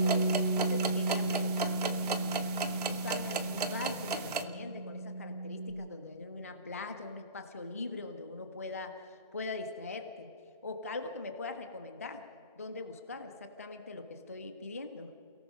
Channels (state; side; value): inverted; both; correlation -0.40